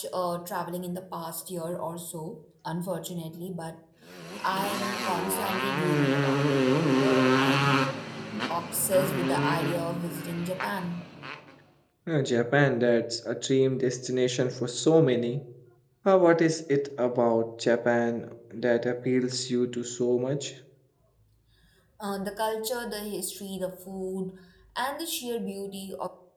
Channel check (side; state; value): both; identical; correlation 1.00